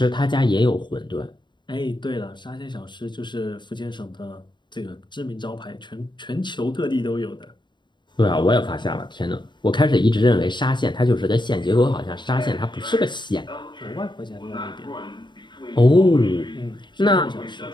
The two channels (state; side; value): late; right; 0.22 ms